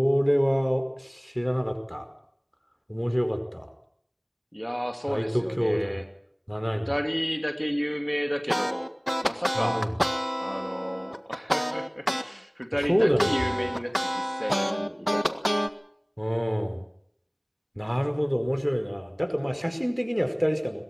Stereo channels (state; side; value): identical; both; correlation 1.00